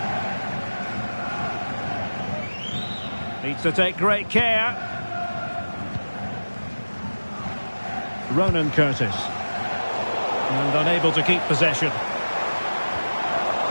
Needs to take great care. Ronan Curtis. And unable to keep possession.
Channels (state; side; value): inverted; both; correlation -1.00